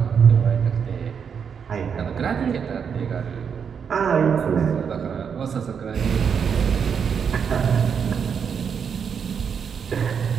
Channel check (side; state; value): left; quieter; 6.9 dB